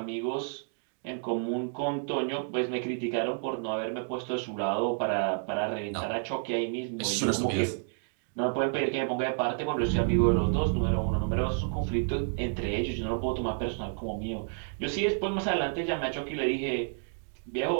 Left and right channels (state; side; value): silent; left; 58 dB below the other